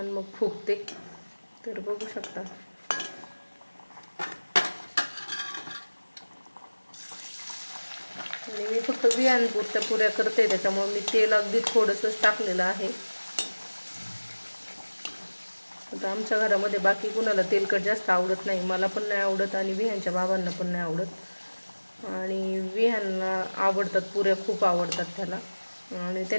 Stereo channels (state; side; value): inverted; both; correlation -1.00